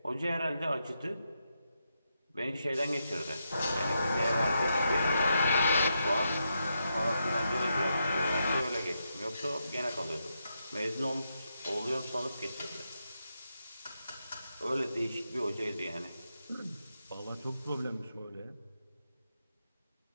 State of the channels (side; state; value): both; inverted; correlation -0.84